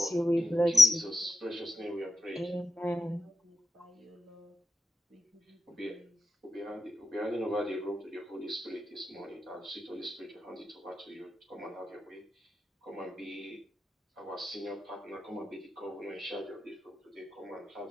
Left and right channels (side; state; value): both; normal; correlation 0.88